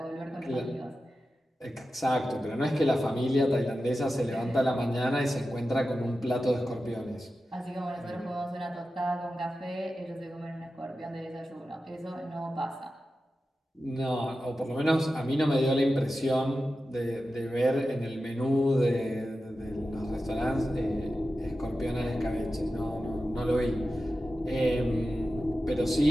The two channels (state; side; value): normal; both; correlation 0.93